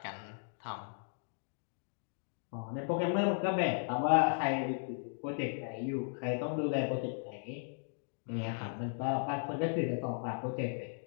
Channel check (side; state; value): right; silent; digital silence